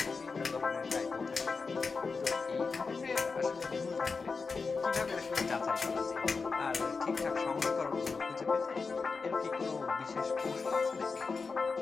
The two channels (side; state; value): right; quieter; 4.6 dB